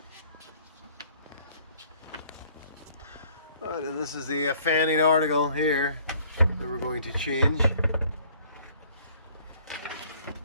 Alright, and this is the fanning article here that we're going to change.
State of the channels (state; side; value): inverted; both; correlation -0.58